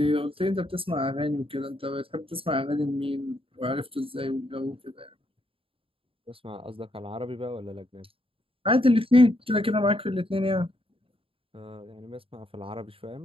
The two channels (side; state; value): left; late; 0.27 ms